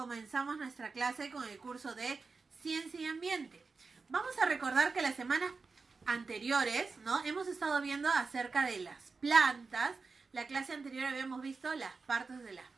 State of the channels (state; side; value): quieter; left; 4.4 dB